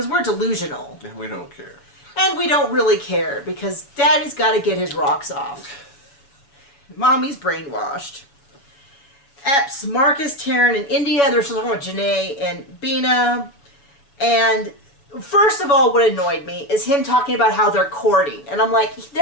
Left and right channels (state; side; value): late; right; 7.1 ms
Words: we're delusional. And we don't care. And we don't really care because Daddy's got to get his rocks off. Mommy's brainwashed. Epps, Marcus, Taryn, and India. They're talking about Janae and Bina. And first of all, what annoyed me is him talking about how they're courting. And I'm like,